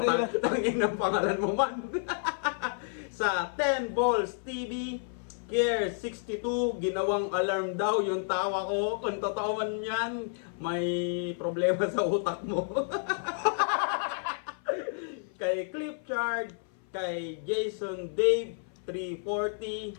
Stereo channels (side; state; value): right; silent; 56 dB below the other